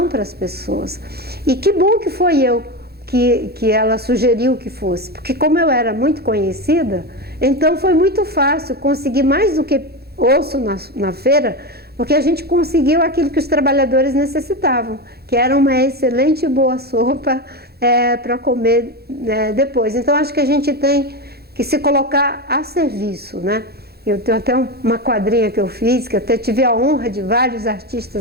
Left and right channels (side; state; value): left; late; 0.46 ms